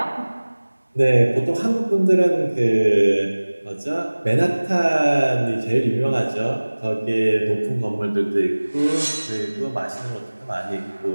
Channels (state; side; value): inverted; both; correlation -1.00